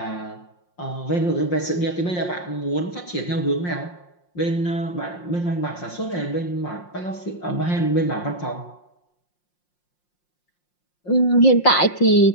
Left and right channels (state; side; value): late; right; 5.6 ms